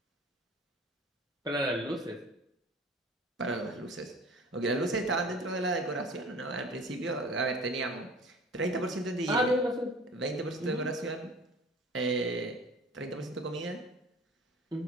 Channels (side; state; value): both; normal; correlation 0.43